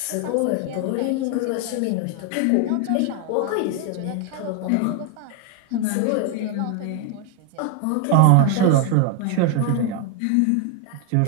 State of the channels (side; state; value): both; different; correlation 0.01